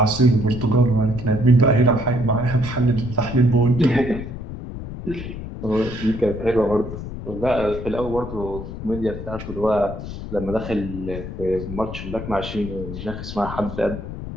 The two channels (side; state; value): left; noise; rumble, 9 dB below the sound